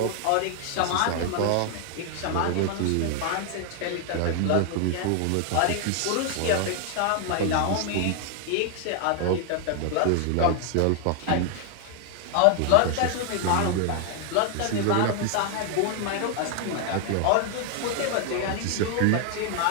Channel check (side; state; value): both; different; correlation 0.00